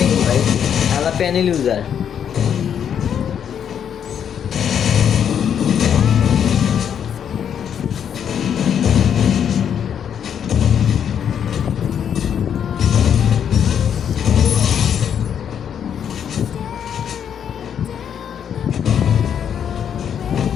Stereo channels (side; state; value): right; quieter; 8.5 dB